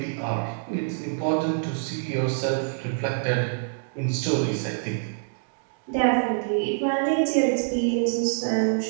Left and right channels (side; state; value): left; silent; digital silence